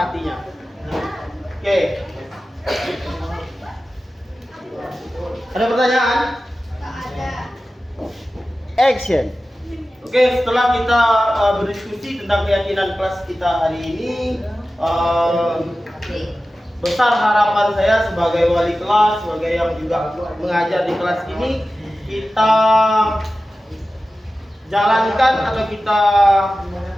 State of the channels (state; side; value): normal; both; correlation 0.95